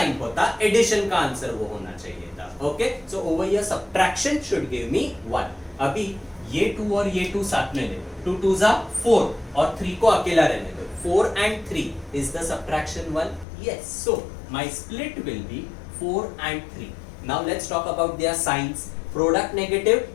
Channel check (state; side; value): drops out; right; at 13.5 s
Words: होता, एडिशन का आंसर वो होना चाहिए था. Okay, so over here subtraction should give मी 1. अभी ये 2 और ये 2 साथ में ले लो. 2 2s are 4 और 3 को अकेला रहने दो. 4 and 3 is the subtraction 1. Yes, so my split will be 4 and 3. Now let's talk about their signs. Product negative,